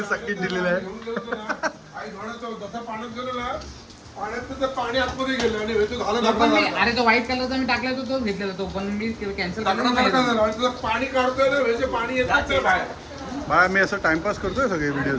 सगळी दिलेलं आहे पाणी आतमध्ये गेलं आणि अरे तो व्हाईट कलरचा मी टाकला तो घेतलेला तो पण मी कॅन्सल पाणी काढतोय ना पाणी येत बाय मी असं टाइमपास करतोय सगळे व्हिडिओ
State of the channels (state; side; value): identical; both; correlation 1.00